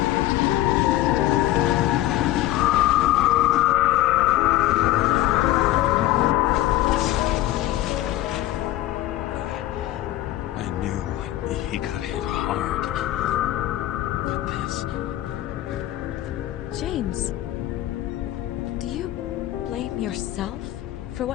James, do you blame yourself for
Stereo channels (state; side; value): quieter; right; 15.1 dB